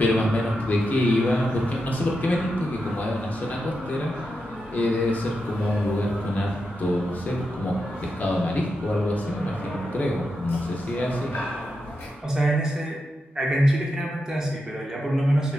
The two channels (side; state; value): both; normal; correlation 0.87